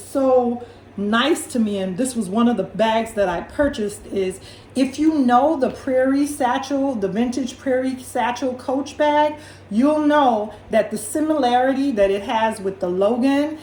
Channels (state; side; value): identical; both; correlation 1.00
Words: nice to me, and this was one of the bags that I purchased, is if you know the Prairie Satchel, the vintage Prairie Satchel Coach bag, you'll know that the similarity that it has with the Logan